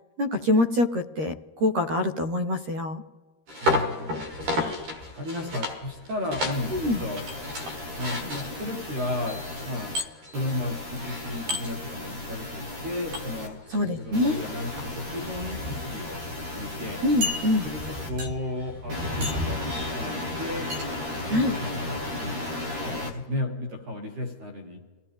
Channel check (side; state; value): left; late; 13 ms